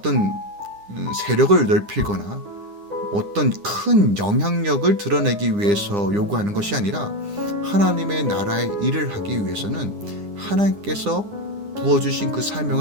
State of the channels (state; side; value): late; left; 9.9 ms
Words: 세력을 넓히거나 어떤 큰 영향력을 드러내기 위해서 요구하는 것이 아니라 하나님의 나라의 일을 하기 위해서는 하나님께서 부어주신 그